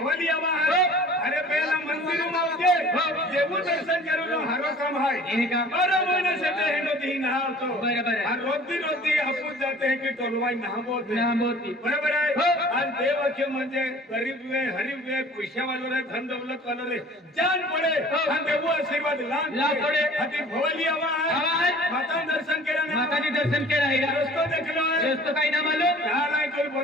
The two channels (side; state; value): both; normal; correlation 0.47